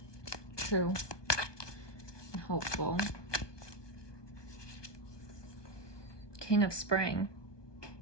true, and hopeful. King of Spring.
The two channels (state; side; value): late; right; 1.2 ms